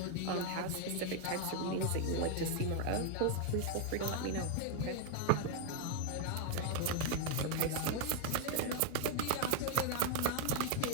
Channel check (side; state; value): both; different; correlation 0.00